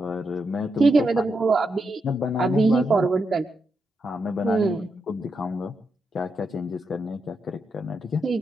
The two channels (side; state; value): both; normal; correlation 0.84